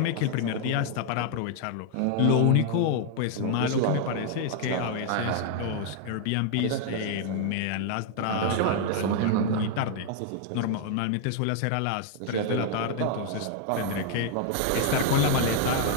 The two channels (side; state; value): both; different; correlation 0.00